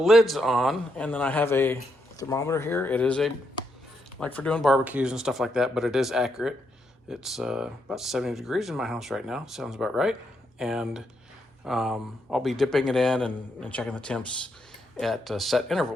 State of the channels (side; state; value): both; normal; correlation 0.79